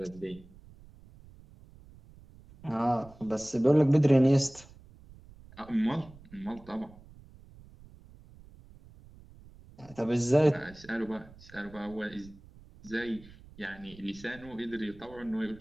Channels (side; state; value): right; noise; rumble, 22 dB below the sound